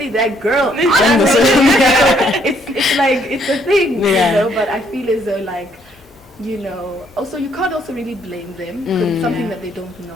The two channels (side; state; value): both; normal; correlation 0.68